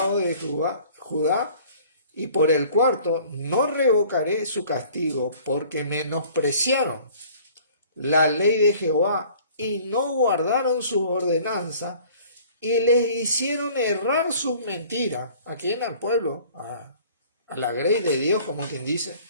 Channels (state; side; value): inverted; both; correlation -0.51